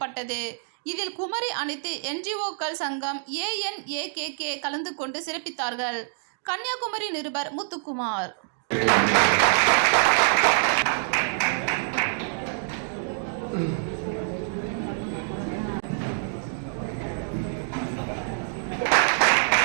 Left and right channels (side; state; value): left; silent; digital silence